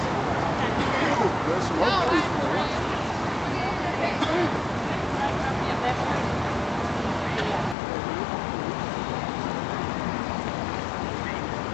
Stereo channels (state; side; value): drops out; right; at 7.8 s